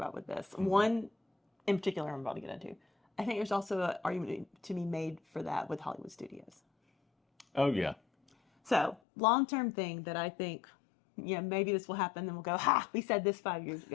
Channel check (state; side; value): drops out; right; at 9.0 s